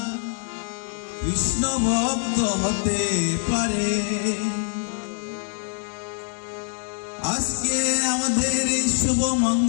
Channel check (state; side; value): silent; right; 62 dB below the other